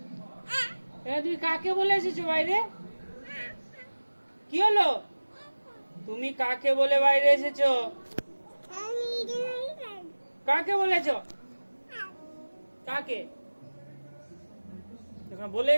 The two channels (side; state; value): both; inverted; correlation -1.00